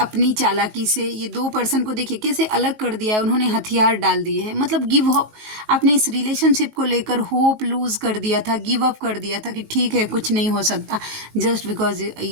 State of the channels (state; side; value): late; left; 19 ms